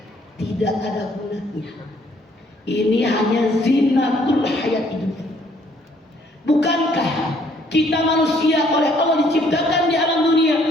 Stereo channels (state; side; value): normal; both; correlation 0.64